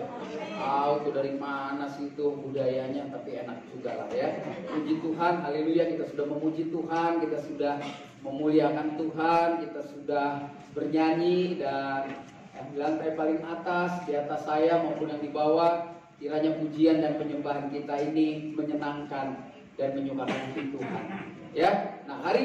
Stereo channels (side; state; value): both; identical; correlation 1.00